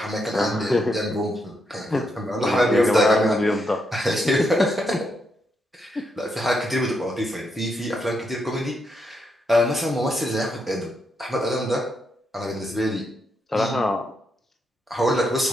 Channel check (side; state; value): both; normal; correlation 0.80